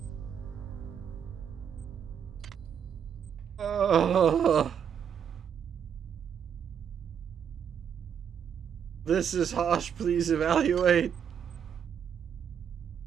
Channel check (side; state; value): left; quieter; 8.0 dB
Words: This is harsh, please evaluate.